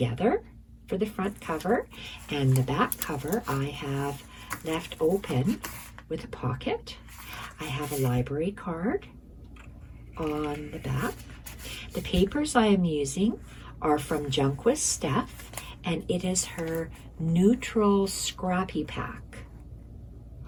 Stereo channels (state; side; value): identical; both; correlation 1.00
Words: for the front cover. And the back cover I have left open with a pocket. I have a library card on the back. The papers I am using are from Junk with Steph, and it is her neutral scrappy pack,